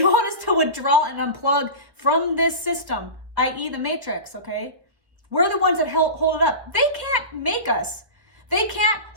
want us to withdraw and unplug from this system, i.e. the Matrix, okay? We're the ones that hold it up. They can't make us. They can't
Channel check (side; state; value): left; late; 1.1 ms